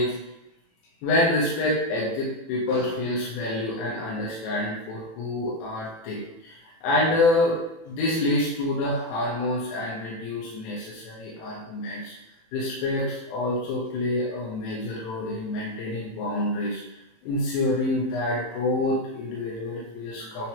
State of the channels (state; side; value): late; right; 18 ms